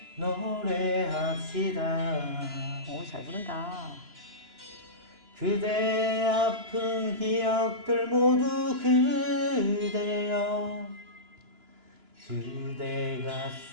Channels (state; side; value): late; left; 2.9 ms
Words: 노래합시다 오, 잘 부른다. 그대 아픈 기억들 모두 그대여 그대